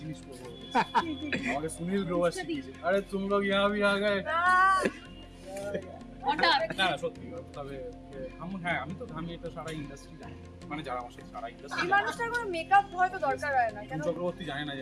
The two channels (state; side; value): identical; both; correlation 1.00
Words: জিনিস করবো, আমাকে সুনীল গ্রোভার শিখিয়েছে, আরে তুম লোগ ইহা ভি আ গয়ে। না সত্যি, তবে আমি এটা সারা ইন্ডাস্ট্রি জানি, মানে যারা আমার সাথে সারা ইন্ডাস্ট্রি এই মানুষটার কোনো মেকআপ হয়তো দরকার হয় না কেন? চক্রবর্তী জানে না